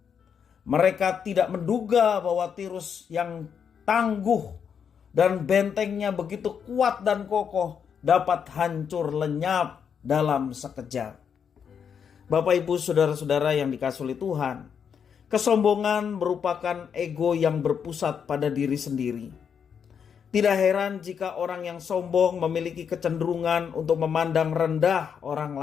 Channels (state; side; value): quieter; right; 7.3 dB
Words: Mereka tidak menduga bahwa Tirus yang tangguh dan bentengnya begitu kuat dan kokoh dapat hancur lenyap dalam sekejap. Bapak, Ibu, saudara-saudara yang dikasihi Tuhan, kesombongan merupakan ego yang berpusat pada diri sendiri. Tidak heran jika orang yang sombong memiliki kecenderungan untuk memandang rendah orang